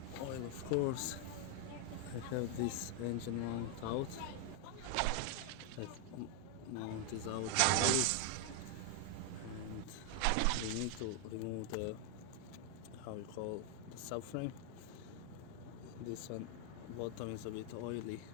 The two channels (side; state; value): both; different; correlation 0.00